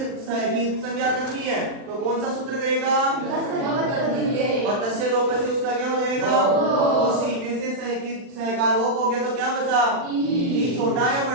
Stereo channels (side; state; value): left; late; 40 ms